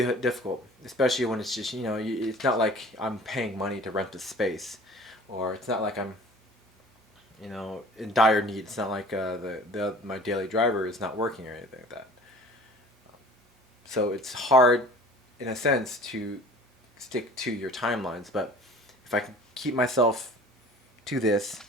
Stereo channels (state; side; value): normal; both; correlation 0.46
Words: difficult, especially when it's just it's not like I'm paying money to rent a space, or it's not like I'm in dire need. It's not like my daily driver is not working or anything like that. So it's hard, in a sense, to stick to your timelines. But if I can keep myself to this,